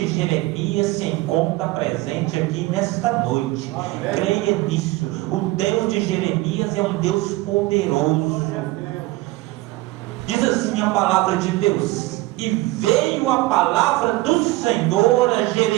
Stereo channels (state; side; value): quieter; left; 19.6 dB